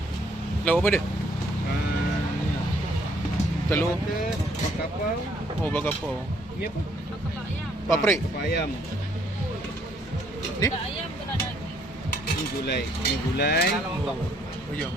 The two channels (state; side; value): normal; both; correlation 0.66